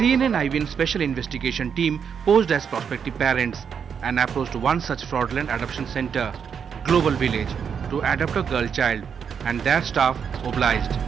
IBN Special Investigation Team posed as prospective parents and approached one such fraudulent adoption center, Global Village, to adopt a girl child, and their staff obliged.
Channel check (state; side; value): quieter; left; 7.1 dB